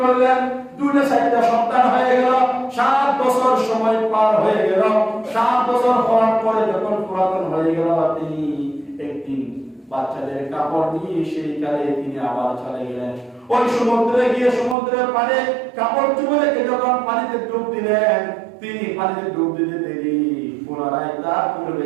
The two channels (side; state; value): left; drops out; at 14.8 s